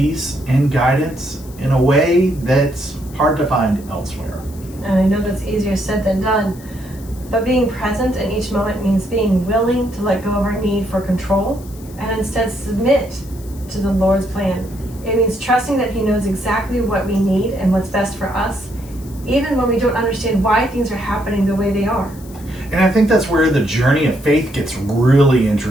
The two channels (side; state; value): left; noise; hiss, 22 dB below the sound